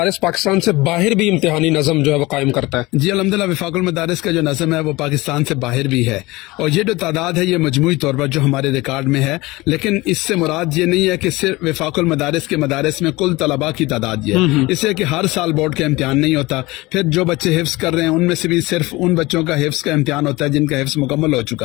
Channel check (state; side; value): quieter; right; 21.2 dB